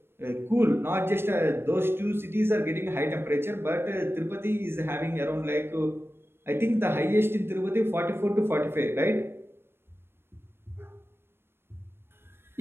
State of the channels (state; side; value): late; left; 0.11 ms